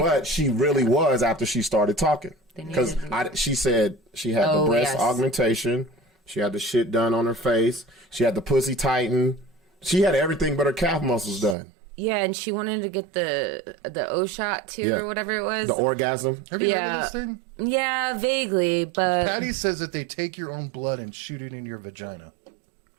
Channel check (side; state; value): left; drops out; at 11.6 s